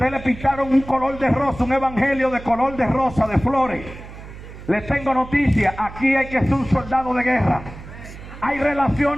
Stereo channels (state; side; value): noise; right; hum, 15 dB below the sound